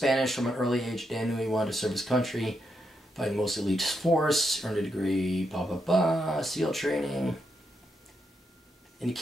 from an early age. Dan knew he wanted to serve his country, fighting most elite force, earned a degree, SEAL training. And he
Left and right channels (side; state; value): both; normal; correlation 0.82